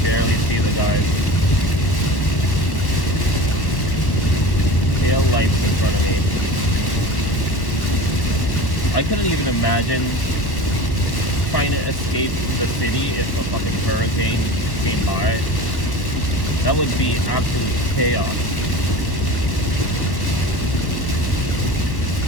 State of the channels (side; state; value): right; late; 1.1 ms